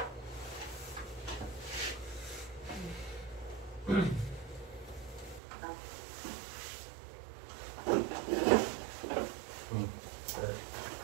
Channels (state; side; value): drops out; left; at 5.4 s